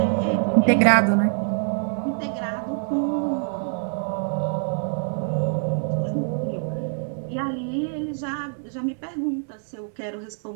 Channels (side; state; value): left; silent; 56 dB below the other